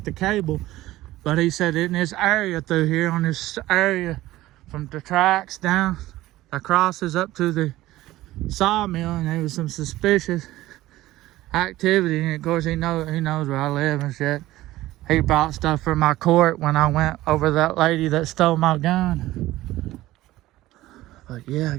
the cable, but he said in this area through here, on this area from the tracks down acrosses up to the sawmill, and there was some suspicious activity. And of course, he knows where I live and shit. He brought stuff for my court when I went over that lady that stole my gun. But yeah,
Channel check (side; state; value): left; quieter; 16.4 dB